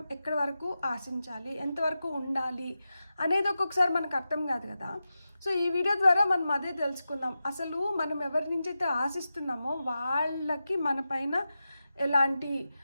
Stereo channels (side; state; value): both; inverted; correlation -0.92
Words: ఎక్కడి వరకు ఆశించాలి, ఎంతవరకు ఉండాలి అనేది ఒక్కొక్కసారి మనకు అర్థం కాదు కదా. సో ఈ వీడియో ద్వారా మనం అదే తెలుసుకుందాం. అసలు మనం ఎవరి నుంచి అయితే ఆశిస్తున్నామో వాళ్ళకి మన పైన ఎలాంటి